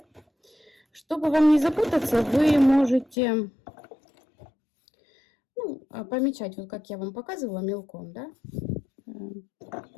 Чтобы вам не запутаться, вы можете помечать, вот как я вам показывала, мелком, да?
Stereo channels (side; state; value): right; drops out; at 3.2 s